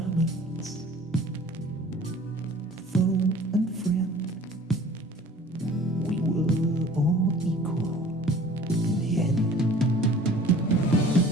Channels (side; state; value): both; normal; correlation 0.48